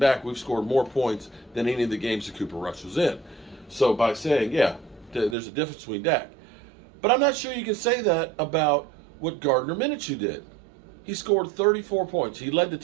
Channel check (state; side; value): drops out; left; at 5.4 s